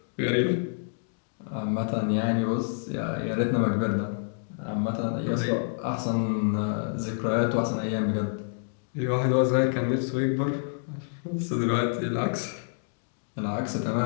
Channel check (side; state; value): right; silent; digital silence